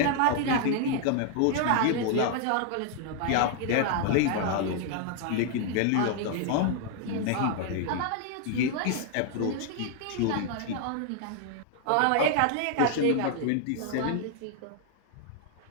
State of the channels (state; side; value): different; both; correlation 0.00